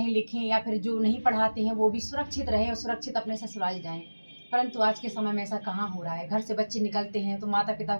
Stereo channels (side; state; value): both; inverted; correlation -1.00